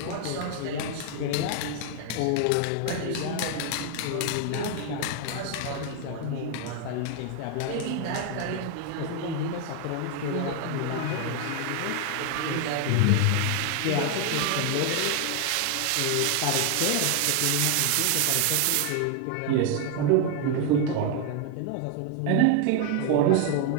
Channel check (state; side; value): different; both; correlation 0.01